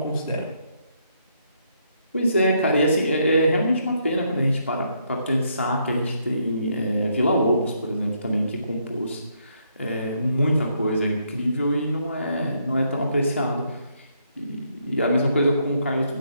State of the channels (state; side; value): inverted; both; correlation -0.74